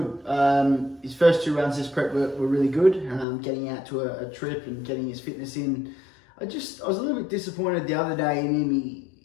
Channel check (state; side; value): drops out; right; at 3.2 s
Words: His first 2 runs this prep were really good. Getting out to a trip and getting his fitness in. I was a little bit disappointed the other day in him.